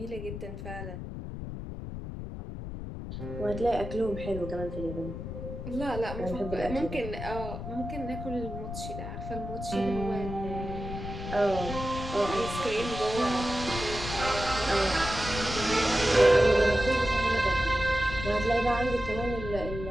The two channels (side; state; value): left; noise; rumble, 7 dB below the sound